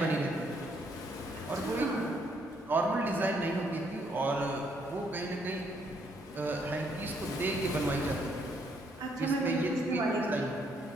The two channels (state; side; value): normal; both; correlation 0.71